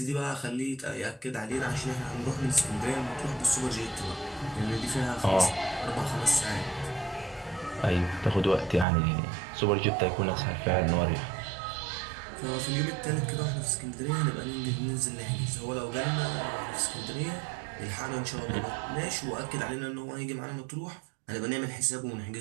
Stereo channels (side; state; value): left; drops out; at 8.8 s